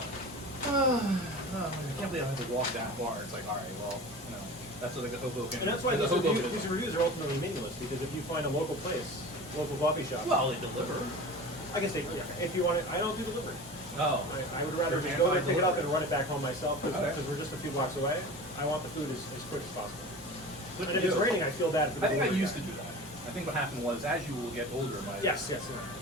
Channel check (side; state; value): both; normal; correlation 0.35